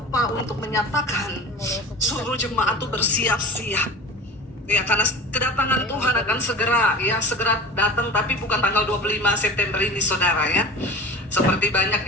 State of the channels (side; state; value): both; normal; correlation 0.35